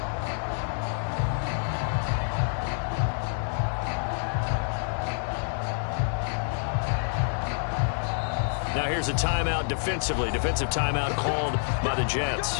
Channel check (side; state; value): right; silent; digital silence